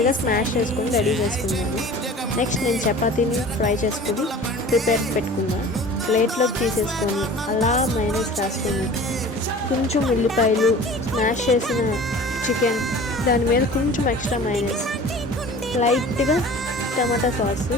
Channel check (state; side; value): normal; both; correlation 0.42